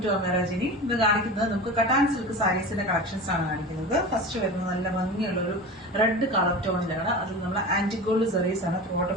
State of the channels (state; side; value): normal; both; correlation 0.31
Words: to അമേറാജിനി. ഇത് കാണിക്കുന്നത് നമുക്ക് കട്ടാൻ സിൽക്ക് സാരീസിന്റെ കളക്ഷൻസ് ആണ് കാണിക്കുന്നത്. ഫസ്റ്റ് വരുന്നത് നല്ല ഭംഗിയുള്ള ഒരു റെഡ് കളർ ടോണിലാണ്. അതിൽ നമ്മൾ ആന്റിഗോൾഡ് സെറീസ് ആണ് ത്രോട്ട്